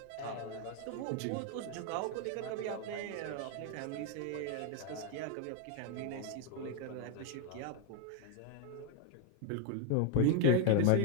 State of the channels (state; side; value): different; both; correlation 0.01